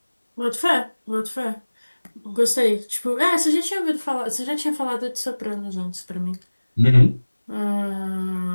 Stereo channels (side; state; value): both; inverted; correlation -1.00